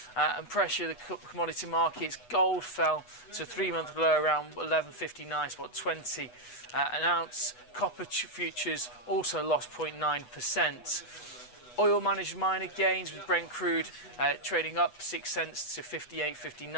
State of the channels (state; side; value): late; right; 8.1 ms